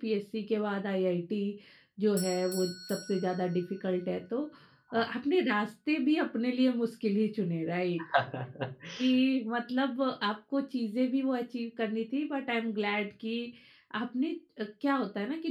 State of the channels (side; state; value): both; identical; correlation 1.00